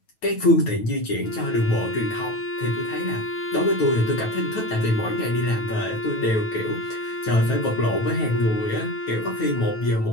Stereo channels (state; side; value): late; right; 9.2 ms